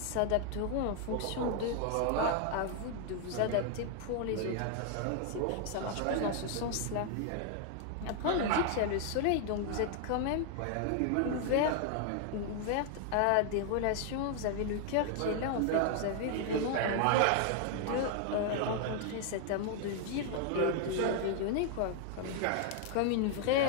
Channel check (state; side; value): different; both; correlation 0.00